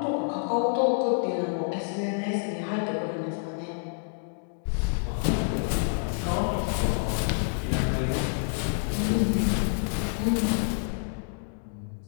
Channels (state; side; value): silent; right; digital silence